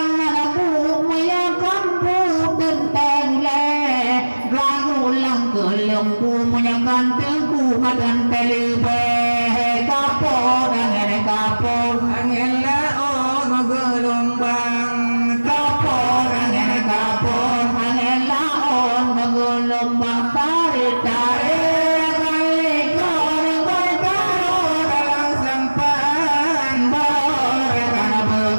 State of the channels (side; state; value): both; inverted; correlation -1.00